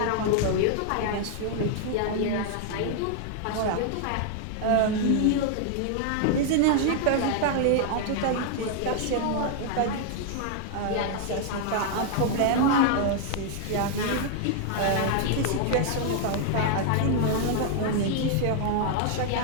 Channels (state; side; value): different; both; correlation 0.00